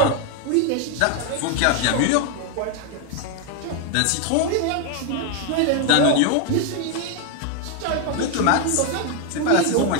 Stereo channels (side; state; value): both; different; correlation 0.01